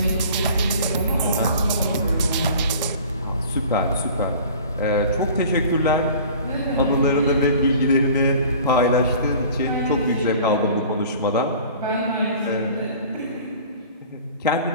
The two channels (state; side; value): inverted; both; correlation -0.45